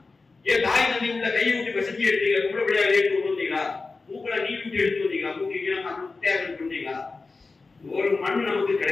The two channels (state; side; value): quieter; right; 4.0 dB